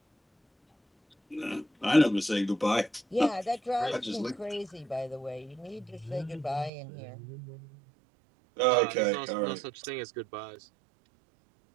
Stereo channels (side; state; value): left; drops out; at 6.7 s